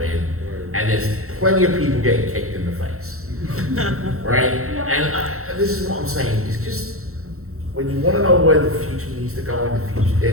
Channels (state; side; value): late; left; 0.63 ms